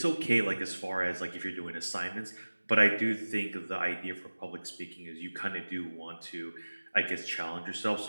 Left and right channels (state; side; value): inverted; both; correlation -1.00